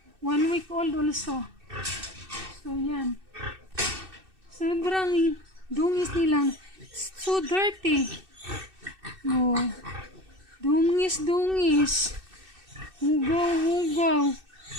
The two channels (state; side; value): late; left; 2.6 ms